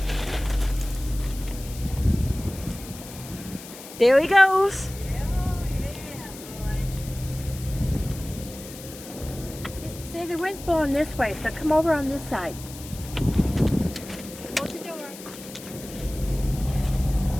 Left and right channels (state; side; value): noise; left; hiss, 15 dB below the sound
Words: There he goes. See, the wind's blowing this way, so come over on this side. Close the door.